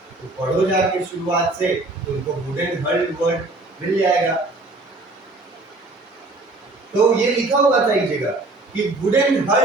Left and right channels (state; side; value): quieter; left; 3.1 dB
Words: तो पढ़ो जाके शुरुआत से, तो उनको वुडन हल्ड वर्ड मिल जाएगा। तो ये लिखा हुआ था एक जगह कि वुडन